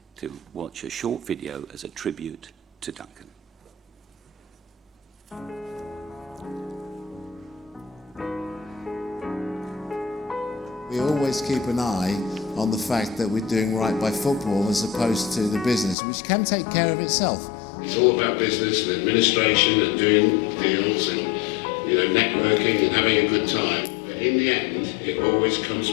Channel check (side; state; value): right; drops out; at 16.0 s